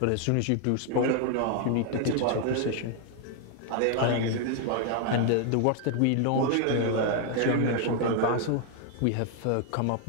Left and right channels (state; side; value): different; both; correlation 0.00